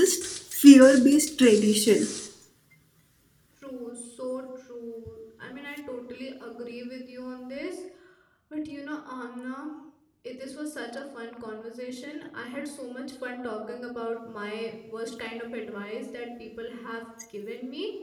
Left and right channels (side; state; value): both; identical; correlation 1.00